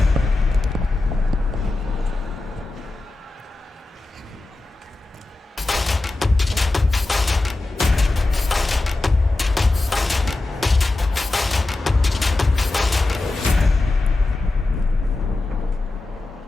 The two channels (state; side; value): quieter; right; 3.0 dB